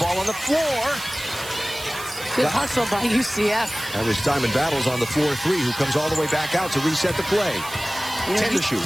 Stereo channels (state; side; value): noise; right; hiss, 13 dB below the sound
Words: on the floor. Good hustle by UCF. That was Diamond Battles on the floor 3, who comes all the way back out to reset the play. 10 to shoot.